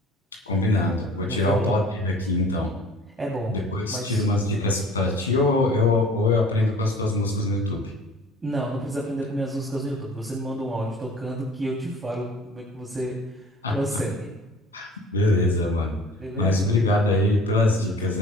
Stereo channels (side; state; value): both; normal; correlation 0.47